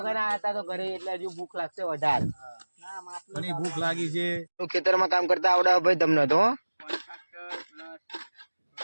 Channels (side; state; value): both; inverted; correlation -1.00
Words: આવ્યા હતા તો ઘરે, એટલે હજુ ભૂખ લાગશે વધારે. ઘણી ભૂખ લાગી છે. ખેતરમાં કામ કરતા આવડે ભાઈ તમને તો?